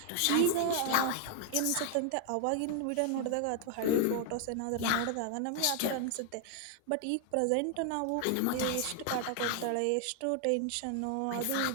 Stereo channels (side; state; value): both; different; correlation 0.00